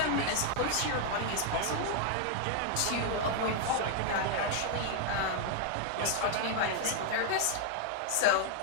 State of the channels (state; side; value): different; both; correlation 0.00